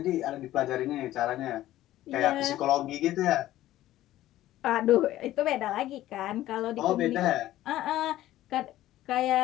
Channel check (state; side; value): quieter; right; 14.5 dB